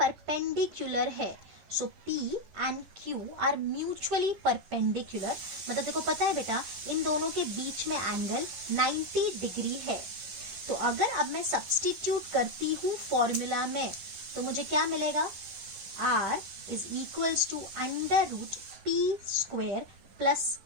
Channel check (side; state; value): left; late; 11 ms